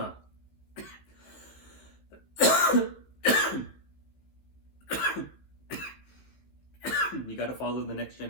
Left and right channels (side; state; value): right; late; 15 ms